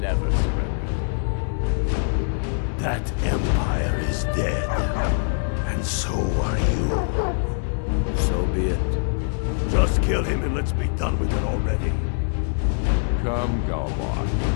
surrendered. That Empire is dead. And so are you. So be it. Just kill him and let's be done with it already. Come, Galvar.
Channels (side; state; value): right; silent; digital silence